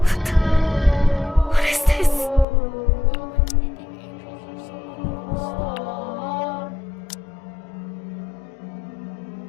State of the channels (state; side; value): drops out; right; at 2.5 s